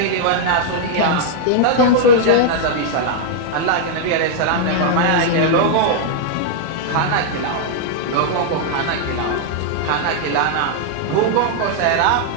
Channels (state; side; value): different; both; correlation -0.01